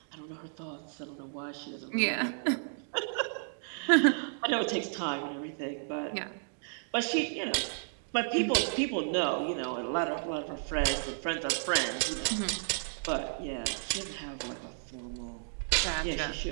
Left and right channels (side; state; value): left; silent; digital silence